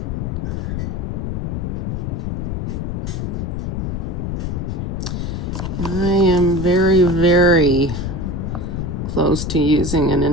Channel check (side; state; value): left; noise; rumble, 2 dB below the sound